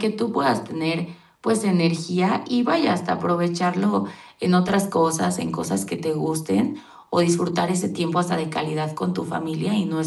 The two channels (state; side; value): identical; both; correlation 1.00